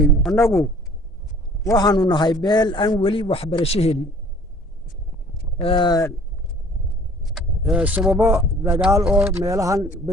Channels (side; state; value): both; normal; correlation 0.52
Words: annagu waxaanu nahay beel aan weli waxbarasho helin sababo dagaal oo meelahan